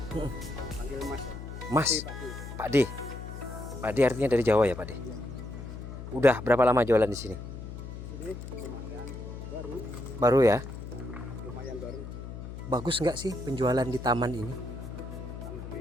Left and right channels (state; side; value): noise; left; hum, 10 dB below the sound